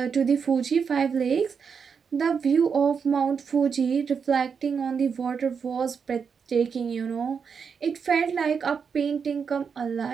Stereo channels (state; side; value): quieter; left; 6.2 dB